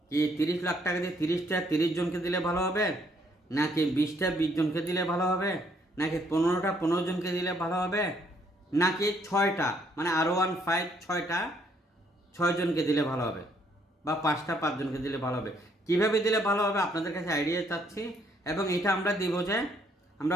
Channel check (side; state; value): both; normal; correlation 0.68